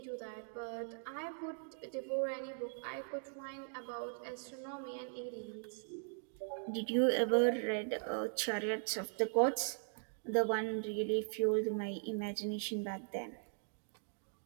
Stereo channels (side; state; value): left; silent; digital silence